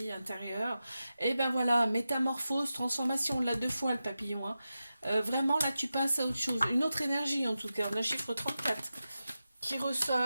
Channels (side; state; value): both; inverted; correlation -0.92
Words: intérieure. Et ben voilà, métamorphose, transformation, là deux fois le papillon, hein. Vraiment là tu passes à autre chose, une autre énergie en tout cas. On a chiffre 34 qui